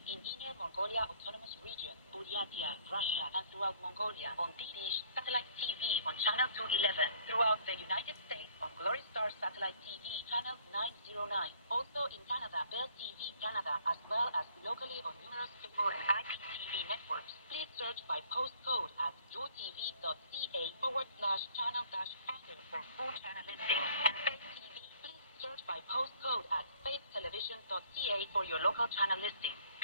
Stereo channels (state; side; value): inverted; both; correlation -0.58